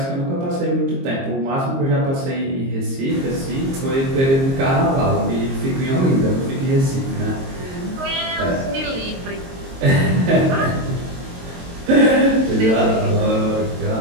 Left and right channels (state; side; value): late; left; 22 ms